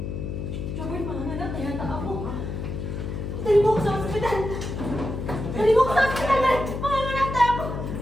Robert, manganak, kaya ako. Dali mo ako sa ospital! Dali mo ako sa ospital! Manganak na ako!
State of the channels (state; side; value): noise; left; hum, 5 dB below the sound